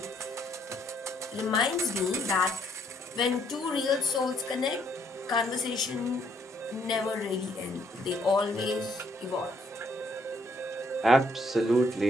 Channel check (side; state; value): both; normal; correlation 0.69